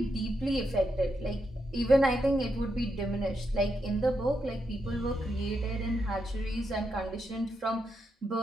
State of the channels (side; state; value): both; normal; correlation 0.83